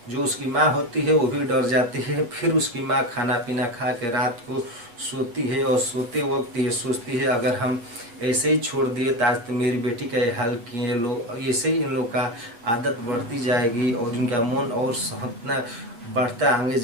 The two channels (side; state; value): left; late; 8.5 ms